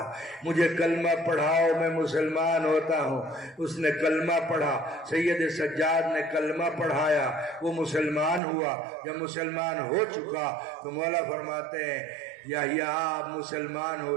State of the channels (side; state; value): left; drops out; at 8.4 s